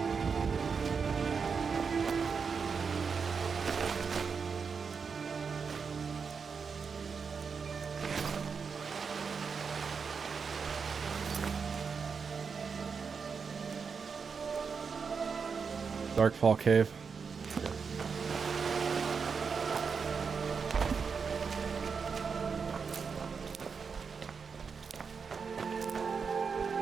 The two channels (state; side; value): quieter; left; 5.7 dB